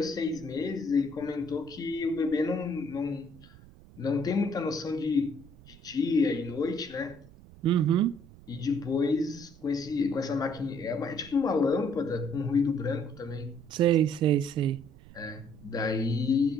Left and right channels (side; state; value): right; noise; rumble, 22 dB below the sound